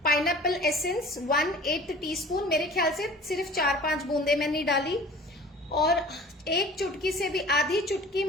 पाइनएप्पल एसेंस 1/8 टीस्पून। मेरे ख्याल से सिर्फ 4-5 बूंदे मैंने डाली। और 1 चुटकी से भी आधी चुटकी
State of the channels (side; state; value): both; normal; correlation 0.44